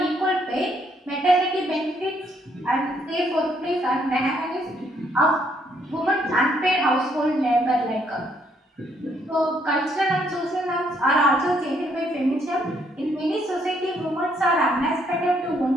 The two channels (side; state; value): both; normal; correlation 0.70